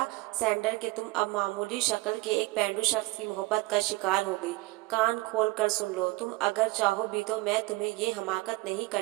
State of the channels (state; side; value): quieter; left; 21.1 dB